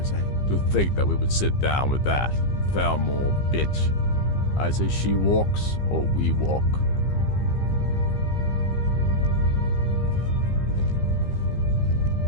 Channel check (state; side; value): late; right; 15 ms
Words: eh? To think that we would sit down with that foul-moral bitch. I say she walks, or we walk.